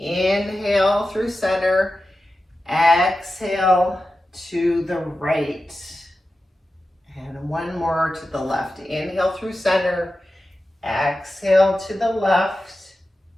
through center, exhale to the right. And 1 more to the left. Inhale through center, exhale to the left.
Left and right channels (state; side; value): normal; both; correlation 0.93